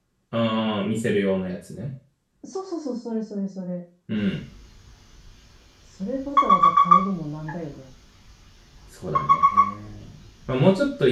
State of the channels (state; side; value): identical; both; correlation 1.00